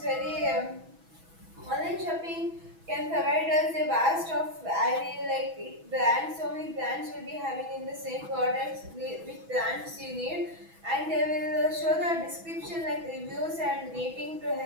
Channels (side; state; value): left; late; 6.1 ms